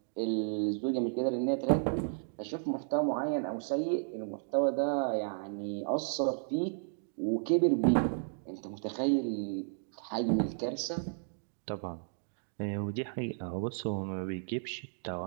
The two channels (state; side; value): silent; left; digital silence